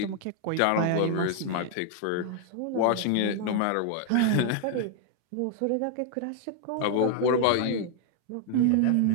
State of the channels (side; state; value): both; different; correlation 0.00